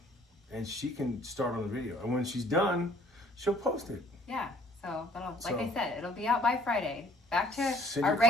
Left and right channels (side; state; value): both; normal; correlation 0.58